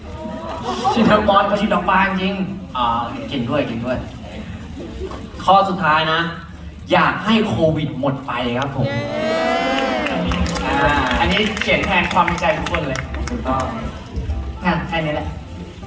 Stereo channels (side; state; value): both; identical; correlation 1.00